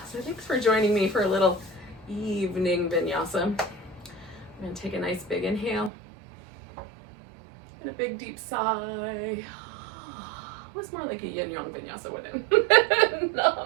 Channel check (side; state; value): left; drops out; at 5.9 s